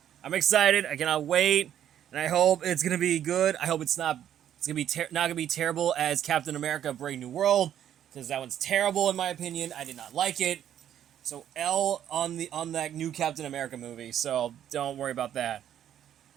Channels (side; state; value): left; quieter; 10.4 dB